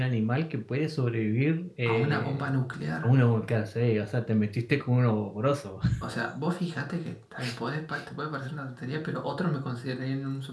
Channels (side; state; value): both; identical; correlation 1.00